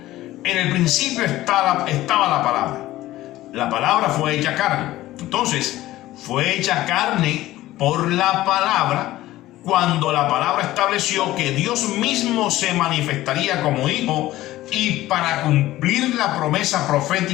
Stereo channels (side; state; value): right; quieter; 15.9 dB